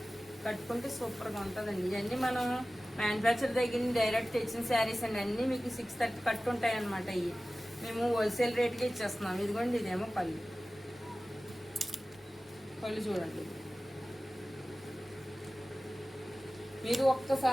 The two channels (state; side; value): normal; both; correlation 0.96